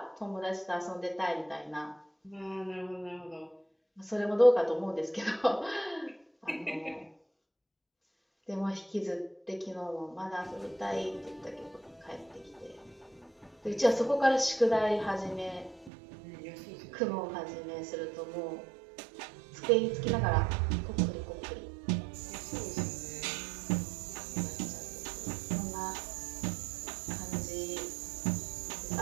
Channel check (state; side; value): drops out; left; at 15.9 s